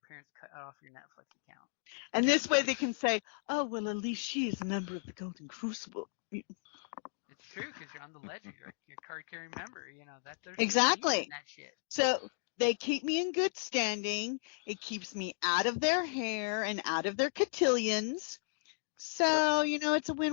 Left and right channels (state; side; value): silent; right; digital silence